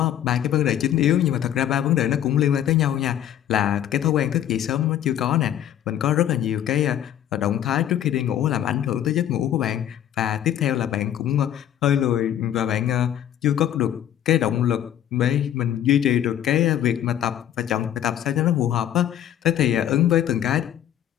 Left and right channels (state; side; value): quieter; right; 11.0 dB